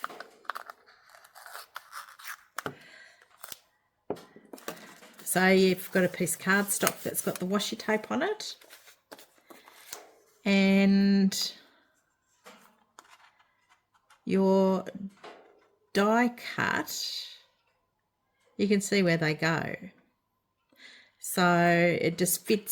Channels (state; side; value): identical; both; correlation 1.00